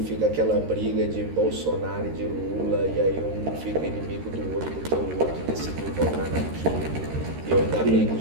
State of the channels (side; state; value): left; late; 13 ms